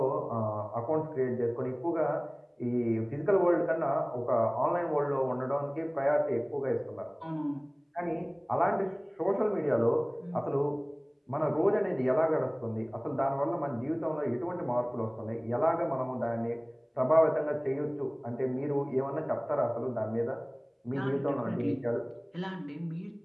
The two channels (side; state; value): both; identical; correlation 1.00